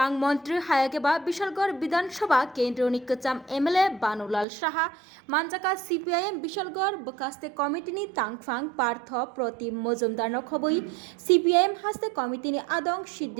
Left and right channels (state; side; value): drops out; left; at 4.5 s